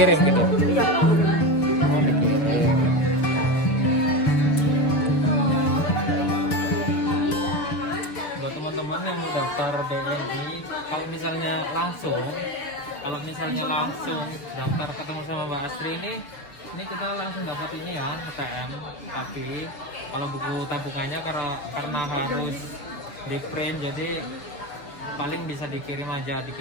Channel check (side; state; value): right; late; 6.9 ms